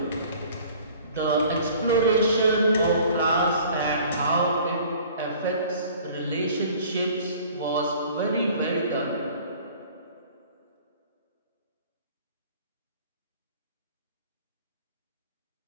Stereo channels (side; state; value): both; inverted; correlation -0.50